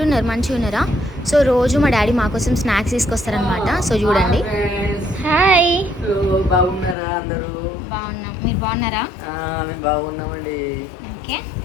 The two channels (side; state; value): right; drops out; at 7.0 s